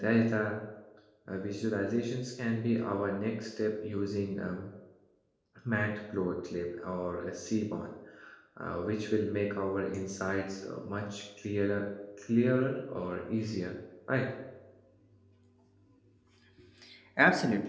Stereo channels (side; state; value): both; identical; correlation 1.00